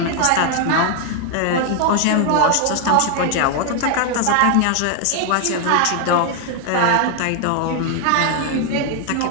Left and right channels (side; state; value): both; different; correlation 0.00